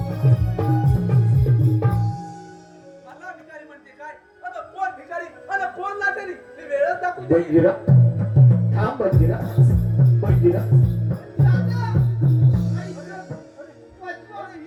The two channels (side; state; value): both; identical; correlation 1.00